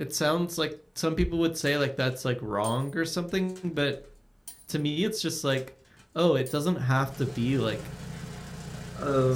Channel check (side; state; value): both; identical; correlation 1.00